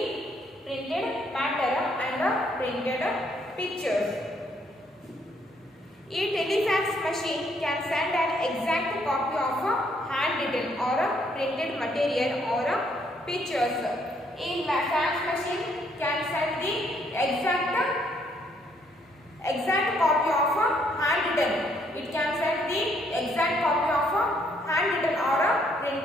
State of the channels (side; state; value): both; normal; correlation 0.69